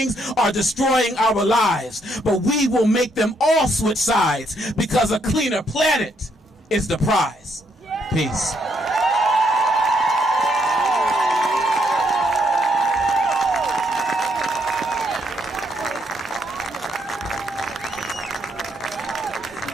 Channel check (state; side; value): normal; both; correlation 0.73